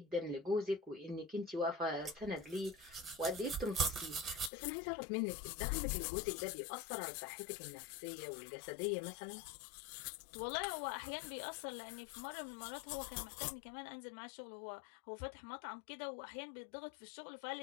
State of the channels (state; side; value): drops out; right; at 4.5 s